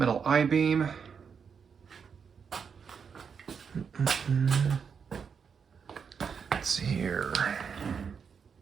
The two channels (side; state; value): left; quieter; 6.4 dB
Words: I-beam. Let's see here.